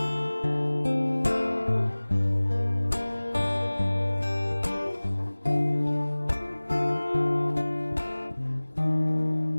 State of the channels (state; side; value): inverted; both; correlation -1.00